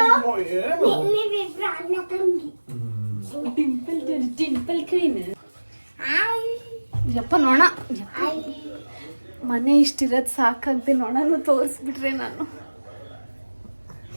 ಡಿಂಪಲ್ ಕ್ವೀನ್. ಯಪ್ಪ ನೋಣ, ಮನೆ ಇಷ್ಟಿರೋದು ಸಾಕಾಗ್ದೆ ನೋಣನು ತೋರಿಸ್ಬಿಟ್ರೆ ನಾನು.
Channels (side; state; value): both; inverted; correlation -1.00